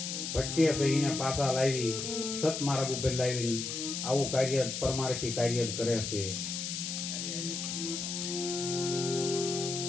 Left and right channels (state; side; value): noise; left; hiss, 4 dB below the sound